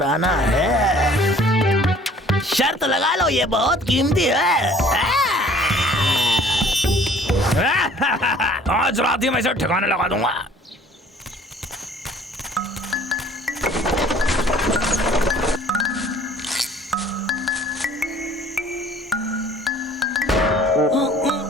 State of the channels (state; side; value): normal; both; correlation 0.53